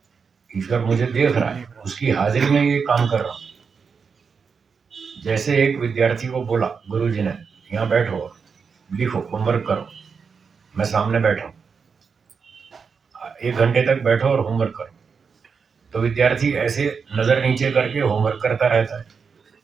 ईश्वर मुझे देख रहा है, उसकी हाजिरी में ये काम कर रहा हूँ। जैसे एक विद्यार्थी को बोला गुरुजी ने, यहाँ बैठो, लिखो, होमवर्क करो, मैं सामने बैठा हूँ, 1 घंटे तक बैठो और होमवर्क करो। तो विद्यार्थी ऐसे नजर नीचे करके होमवर्क करता रहता है,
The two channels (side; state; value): left; quieter; 5.7 dB